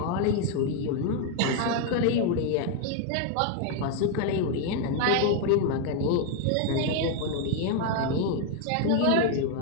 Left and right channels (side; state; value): both; different; correlation 0.00